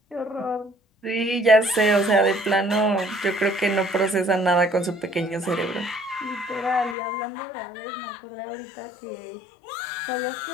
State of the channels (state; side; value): drops out; right; at 7.0 s